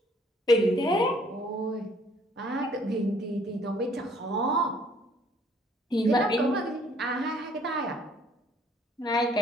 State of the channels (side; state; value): both; normal; correlation 0.61